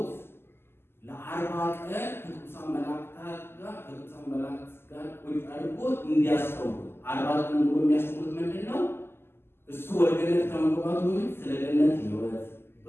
ለ40 ቀን ከቅዱሳን መላእክት ጋር ቁጭ አድርጎት እንዲያስተምሩ 40 ቀን ሙሉ የሚያስተምሩት ምንድን ነው? እሱ ወደ ገነት ከመግባቱ በፊት ስለ ገነት ሕይወት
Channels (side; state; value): right; late; 0.12 ms